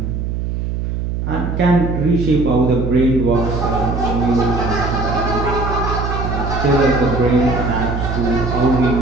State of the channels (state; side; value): noise; right; hum, 3 dB below the sound